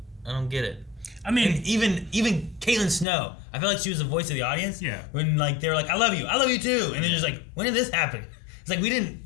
don't get it. I mean, and even Caitlin Snow, I felt like she was the voice of the audience. Yeah. When, like, they were like, I love you too, and then just like, when did this happen? It's like we didn't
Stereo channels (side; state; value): right; drops out; at 3.1 s